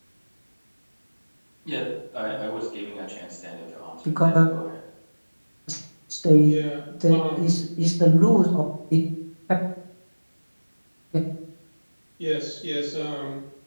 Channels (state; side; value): inverted; both; correlation -1.00